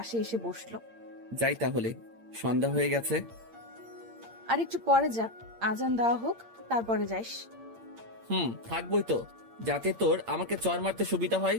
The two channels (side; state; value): left; late; 8.7 ms